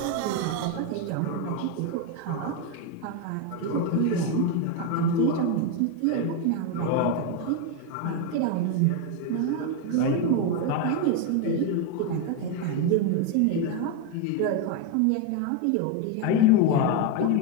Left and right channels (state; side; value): different; both; correlation 0.02